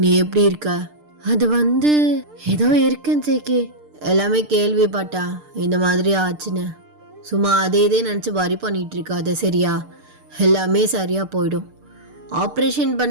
எப்படி இருக்க? அது வந்து ஏதோ இருக்கேன் ஜேகே, எல்லாமே கேள்விப்பட்டேன் இந்த மாதிரி ஆச்சுன்னு. சும்மா அதே இதே நினச்சி வரி பண்ணிகிட்டு இருக்காது சரியா? எல்லாமே சரியாக போயிடும். ஆப்ரேஷன்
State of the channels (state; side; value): late; left; 6.7 ms